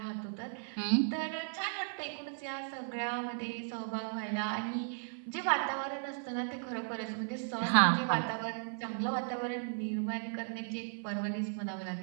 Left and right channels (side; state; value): left; silent; 54 dB below the other